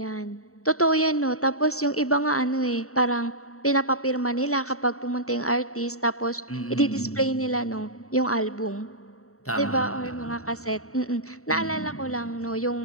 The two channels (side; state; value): right; late; 0.64 ms